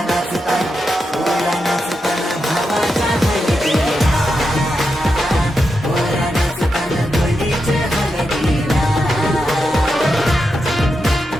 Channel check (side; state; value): both; normal; correlation 0.87